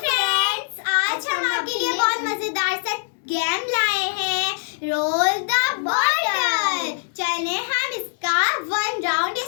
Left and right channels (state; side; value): silent; right; digital silence